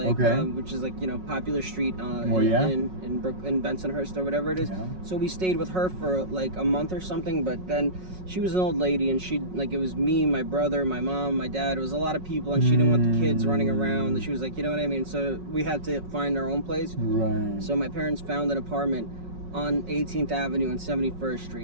which is like, you know, popular street in Bensonhurst or whatever it is. Yeah. So we stayed with her for like a month or something, but then she was an old lady and it was me, my brother, my mom, my dad. It was a lot of people and she didn't want the kids running around. She was like, you know what I mean? So we had to find our own place. Right. So my parents found an apartment on 18th Avenue and 71st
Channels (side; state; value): left; late; 5.4 ms